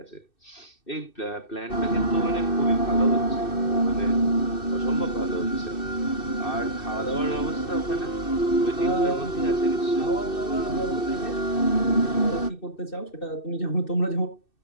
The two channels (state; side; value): late; right; 2.6 ms